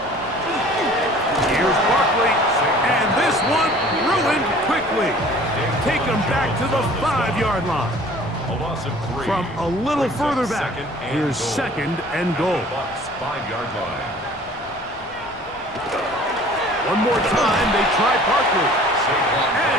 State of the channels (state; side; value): noise; left; rumble, 22 dB below the sound